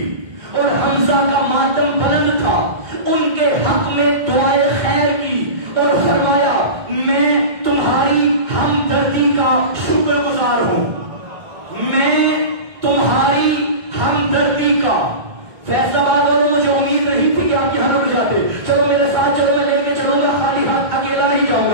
اور حمزہ کا ماتم بلند تھا، ان کے حق میں دعائے خیر کی اور فرمایا میں تمہاری ہمدردی کا شکر گزار ہوں، میں تمہاری ہمدردی کا۔ فیصل آباد والوں مجھے امید نہیں تھی کہ آپ یہاں رک جاتے، چلو میرے ساتھ چلو، میں لے کے چلوں گا، خالی ہاتھ اکیلا نہیں جاؤں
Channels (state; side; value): late; left; 2.2 ms